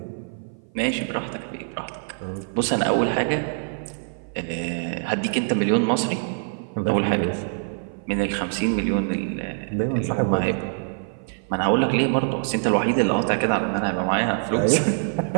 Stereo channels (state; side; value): silent; left; 56 dB below the other